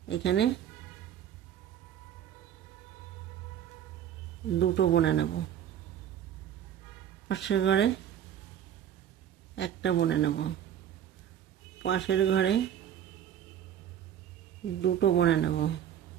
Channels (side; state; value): left; quieter; 10.0 dB